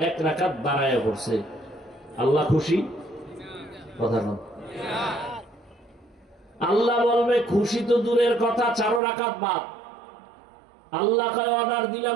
1 রাকাত বাড়াইয়া পড়ছে। আল্লাহ খুশি? কথা না। আল্লাহ বলবে খুশি তো দূরের কথা, 4 রাকাত বাদ। আল্লাহকে অর্ডার দিলাম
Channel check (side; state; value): left; drops out; at 9.0 s